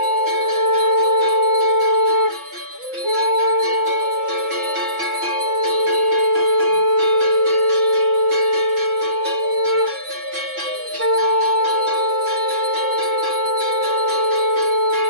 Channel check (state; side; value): late; left; 6.0 ms